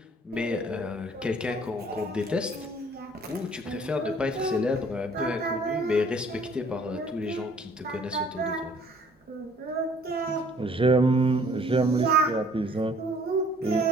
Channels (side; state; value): both; normal; correlation 0.57